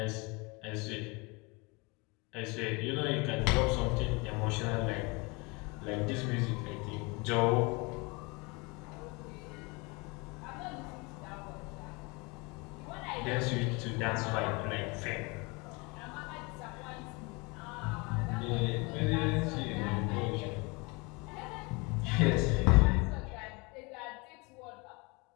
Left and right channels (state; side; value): quieter; right; 27.9 dB